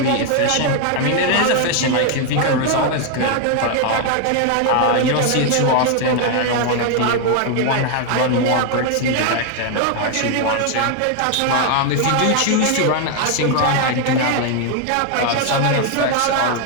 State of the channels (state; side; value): different; both; correlation 0.01